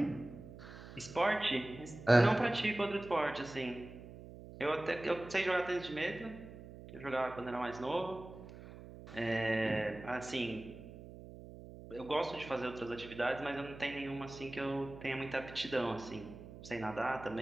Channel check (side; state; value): right; noise; hum, 15 dB below the sound